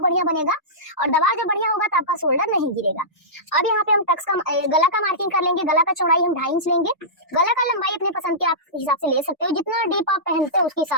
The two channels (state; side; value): normal; both; correlation -0.17